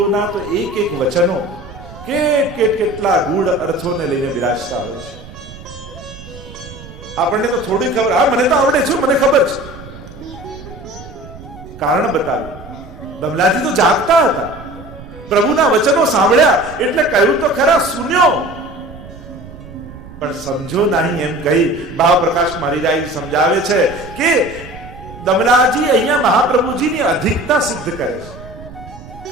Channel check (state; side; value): noise; right; rumble, 16 dB below the sound